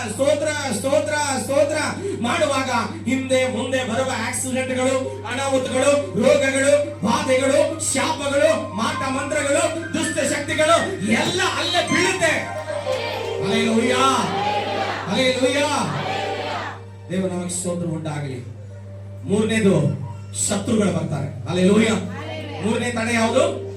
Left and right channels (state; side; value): identical; both; correlation 1.00